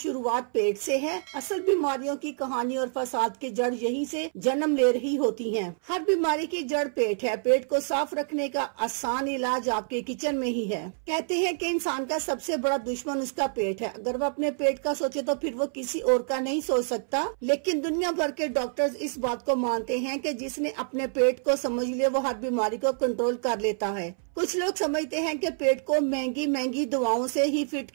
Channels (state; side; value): silent; left; 60 dB below the other